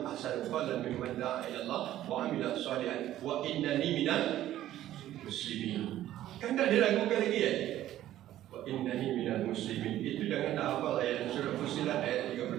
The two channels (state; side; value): quieter; left; 13.2 dB